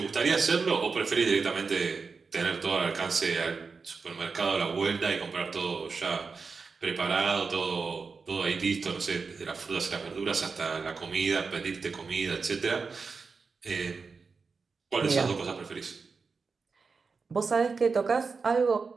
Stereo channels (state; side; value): quieter; left; 4.8 dB